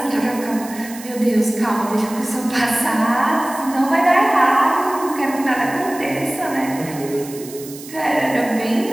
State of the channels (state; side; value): noise; right; hiss, 15 dB below the sound